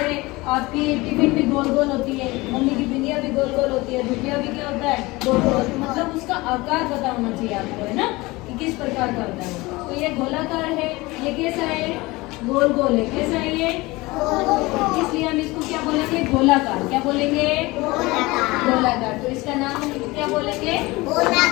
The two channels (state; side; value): quieter; right; 21.9 dB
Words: आपकी टिफिन भी गोल गोल होती है, मम्मी की बिंदिया भी गोल गोल होती है, दुनिया भी क्या होता है? गोल गोल। मतलब उसका आकार पता होना चाहिए आपको, है ना, कि किस प्रकार का होता है। तो ये गोलाकार है, ये कैसा है? गोल गोल है। कैसा है ये? इसलिए हम इसको क्या बोलेंगे? गोलाकार। क्या बोलेंगे? गोलाकार। तो इसका नाम हम क्या बोलेंगे?